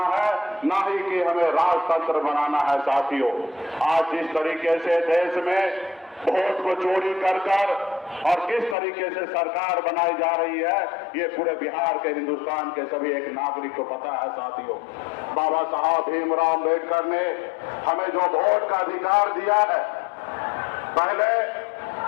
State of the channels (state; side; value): drops out; right; at 8.8 s